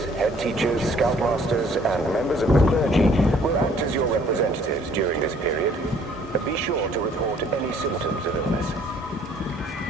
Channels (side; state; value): both; normal; correlation 0.59